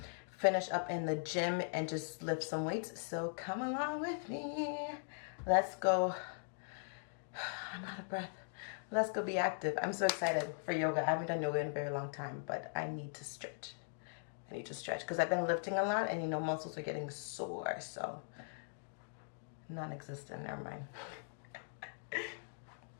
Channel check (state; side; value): silent; right; digital silence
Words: finish up in the gym and just lift some weights. So come along with me. Let's go. I'm out of breath. Let's go be active. I'm so excited for yoga. I haven't done yoga in a very long time, but I need to stretch. I need to stretch because I've been lifting a lot, and you know, muscles are getting sore, so non-existent, never mind.